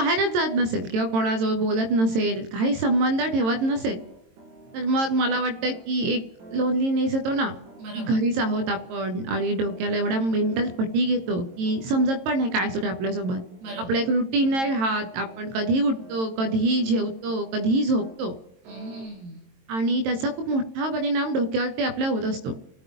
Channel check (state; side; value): late; left; 22 ms